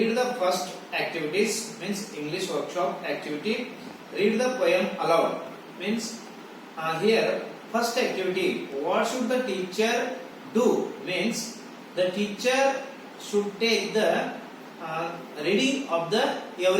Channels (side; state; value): both; identical; correlation 1.00